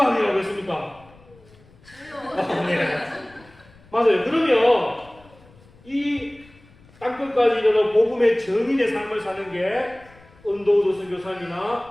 아니라고 했습니까? 네. 맞아요. 그러면 이 땅끝까지 이르러 복음의 증인의 삶을 사는 게 언더우드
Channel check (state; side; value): noise; left; rumble, 26 dB below the sound